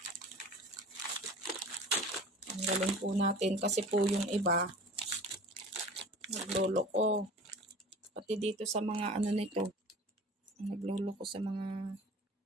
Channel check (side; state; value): both; normal; correlation 0.40